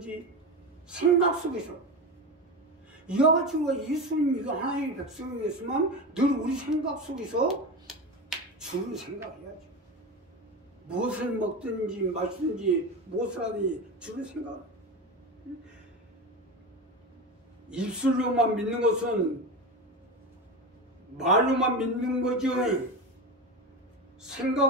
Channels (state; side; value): normal; both; correlation 0.22